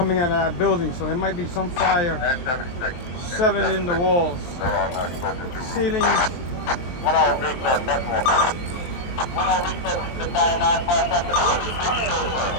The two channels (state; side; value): late; right; 23 ms